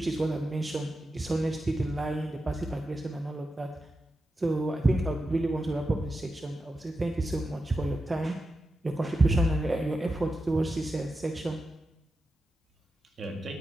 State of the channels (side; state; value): both; normal; correlation 0.90